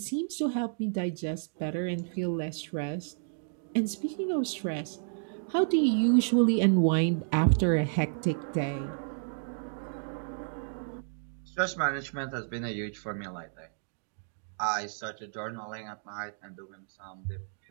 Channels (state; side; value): silent; left; digital silence